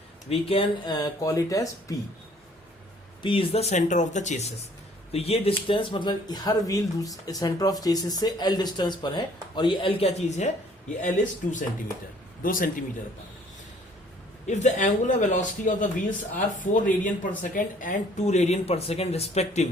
we can call it as P. P is the centre of the chassis. तो ये डिस्टेंस मतलब हर व्हील सेंटर ऑफ चेसिस से L distance पर है, और ये L क्या चीज है, ये एल इज 2 सेंटीमीटर, 2 सेंटीमीटर पर। If the angular velocity of the wheels are 4 radian per second and 2 radian per second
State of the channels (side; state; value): both; normal; correlation 0.58